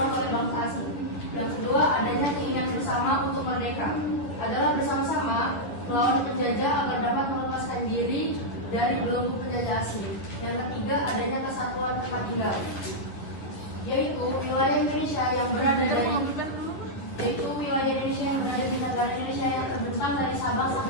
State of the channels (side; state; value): right; late; 10 ms